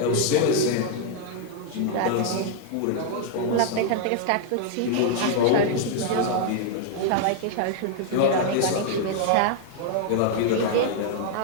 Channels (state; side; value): different; both; correlation 0.00